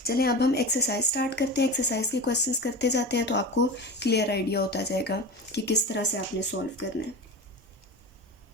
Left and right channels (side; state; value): both; normal; correlation 0.28